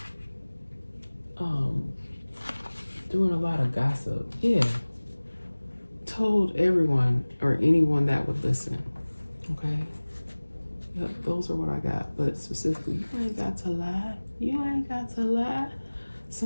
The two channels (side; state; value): both; inverted; correlation -1.00